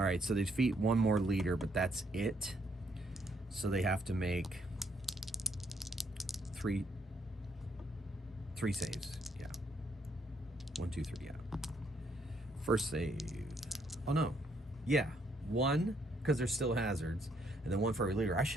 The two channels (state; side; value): normal; both; correlation 0.71